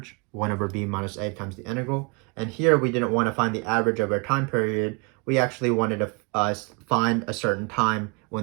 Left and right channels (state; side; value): quieter; left; 32.3 dB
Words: 1 over b minus a times the integral. And here we didn't want to find the average over a time period. We actually wanted to find a certain time